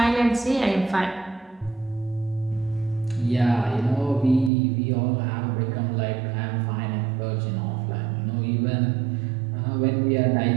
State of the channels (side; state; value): left; drops out; at 4.5 s